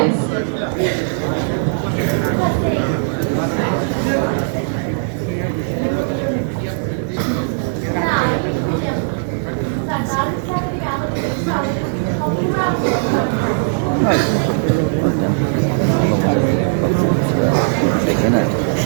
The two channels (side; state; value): left; silent; digital silence